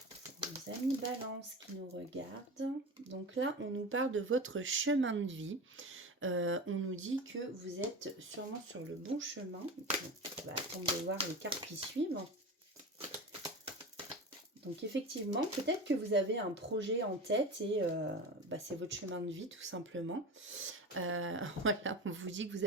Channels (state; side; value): normal; both; correlation 0.28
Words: Nos amis Balance qui nous regardent. Donc là, on nous parle de votre chemin de vie. On nous dit que vous êtes sûrement sur le bon chemin. Donc, on va attendre de voir les cartes qui suivent. Donc effectivement, peut-être que vous avez un projet en tête et c'est votre chemin de vie tout simplement. Voilà, on vous dit que vous